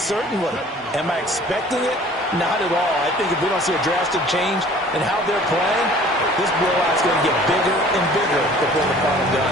Am I expecting it? Not at all. I think if we don't see a drastic change in how they're playing, this blowout's going to get bigger and bigger before the final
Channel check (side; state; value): both; normal; correlation 0.50